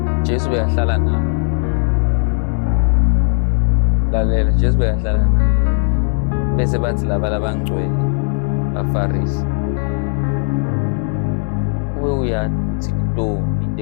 Jesu beyahlala nabo. Lalela, Jesu beyahlala nabo. Bese bathi laba labangcwele baFarisi. Uwe uyathi uthi ntoni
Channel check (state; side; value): silent; right; 57 dB below the other